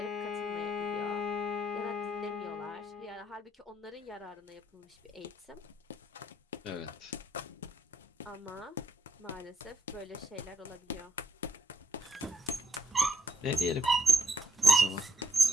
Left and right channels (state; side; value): normal; both; correlation 0.76